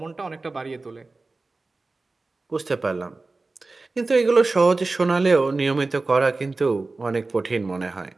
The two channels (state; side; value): quieter; left; 3.5 dB